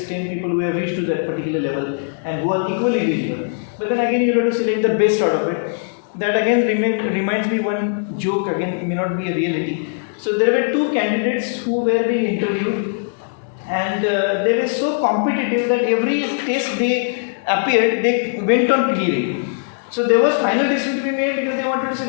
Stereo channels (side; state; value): right; silent; digital silence